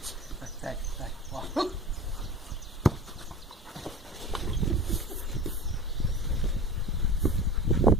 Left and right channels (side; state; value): both; normal; correlation 0.36